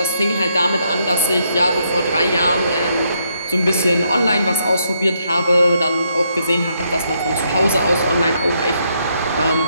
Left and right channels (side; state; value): both; inverted; correlation -0.76